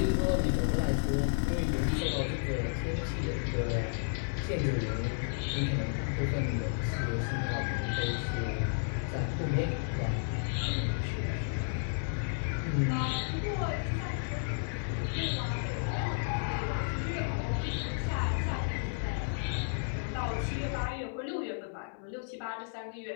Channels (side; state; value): right; silent; 56 dB below the other